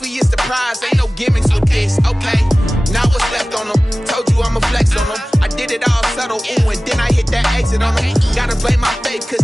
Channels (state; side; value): normal; both; correlation 0.97